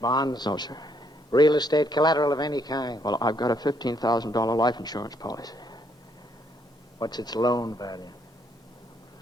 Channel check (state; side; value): normal; both; correlation 0.71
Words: Bonds? No, sir. Real estate collateral of any kind? Well, I've got a $15,000 life insurance policy. What's its loan value?